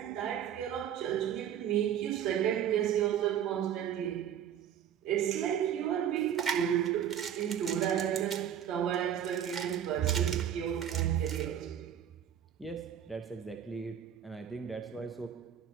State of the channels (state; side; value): quieter; left; 9.6 dB